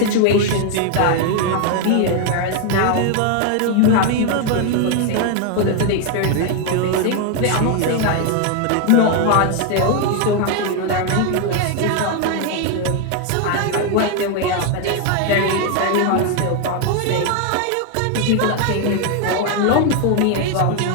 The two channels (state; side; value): different; both; correlation 0.01